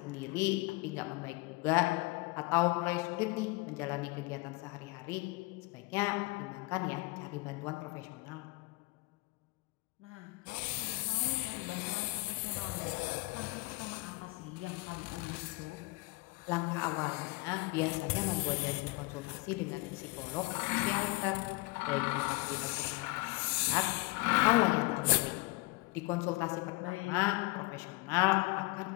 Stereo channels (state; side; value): quieter; right; 24.6 dB